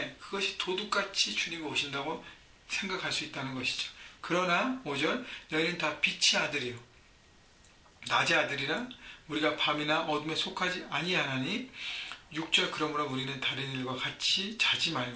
그것이 도둑같이 주님이 오신다고 생각할 수 있다는 것이죠. 그러나 5절 너희는 다 빛의 아들이요 낮의 아들이라 우리가 밤이나 어둠에 속하지 아니하나니. 6절 그러므로 우리는 다른 일과 같이 자지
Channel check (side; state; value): both; identical; correlation 1.00